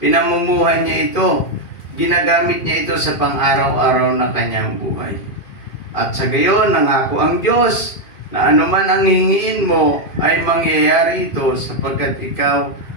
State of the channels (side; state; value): right; late; 2.5 ms